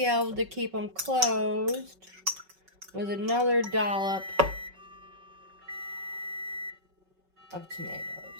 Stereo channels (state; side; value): late; left; 5.3 ms